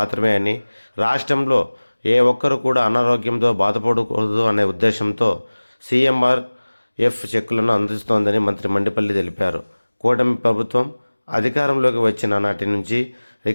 అని, రాష్ట్రంలో ఏ ఒక్కరు కూడా అనారోగ్యంతో బాధపడకూడదు అనే ఉద్దేశంతో CMRF చెక్కులను అందిస్తోందని మంత్రి మండిపల్లి తెలిపారు. కూటమి ప్రభుత్వం అధికారంలోకి వచ్చిన నాటి నుంచి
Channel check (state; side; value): inverted; both; correlation -1.00